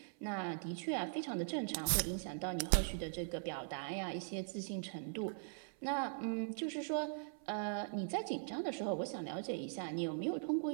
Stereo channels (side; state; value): left; silent; 51 dB below the other